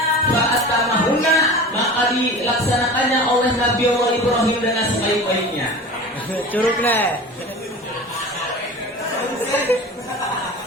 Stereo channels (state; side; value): normal; both; correlation 0.35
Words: fa'tamahunna maka dilaksanakannya oleh Nabi Allah Ibrahim dengan sebaik-baiknya. Curug nih.